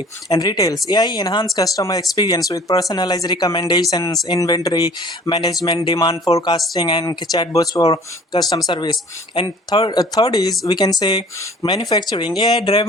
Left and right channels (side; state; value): both; normal; correlation 0.49